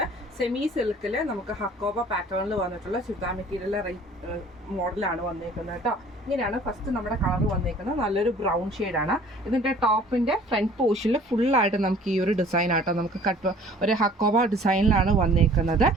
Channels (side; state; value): both; normal; correlation 0.51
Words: സെമി സിൽക്കിൽ നമുക്ക് ഹക്കോബ പാറ്റേണിൽ വന്നിട്ടുള്ള ചുരിദാർ മെറ്റീരിയൽ മോഡലാണ് വന്നേക്കുന്നത് കേട്ടോ. ഇങ്ങനെയാണ് ഫസ്റ്റ് നമ്മുടെ കളർ വന്നേക്കുന്നത്. നല്ലൊരു ബ്രൗൺ ഷെയ്ഡാണ്. ഇതിൻ്റെ ടോപ്പിൻ്റെ ഫ്രണ്ട് പോർഷനിൽ ഫുള്ളായിട്ട് നമുക്ക് ഈ ഒരു ഡിസൈൻ ആട്ടോ നമുക്ക് ഒരു ഹക്കോബ ഡിസൈനിലാണ് വന്നേക്കുന്നത്.